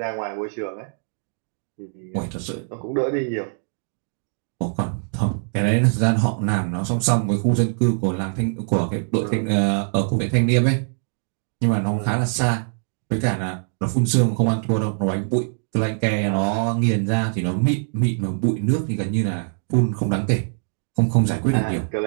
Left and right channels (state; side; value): silent; left; digital silence